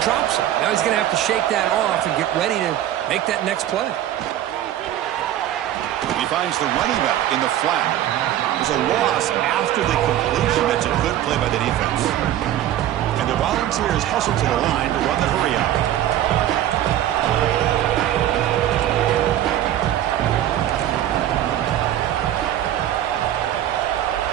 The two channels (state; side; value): quieter; left; 12.2 dB